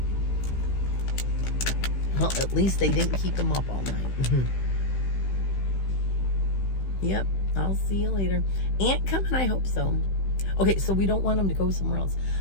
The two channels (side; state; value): right; late; 15 ms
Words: Well, at least they didn't keep him up all night. Yep, I'll see you later. Aunt coming? I hope so. Okay, so we don't want him to go somewhere else.